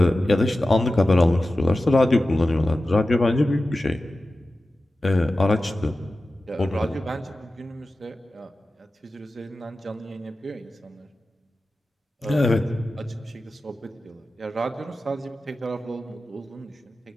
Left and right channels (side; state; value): both; normal; correlation 0.94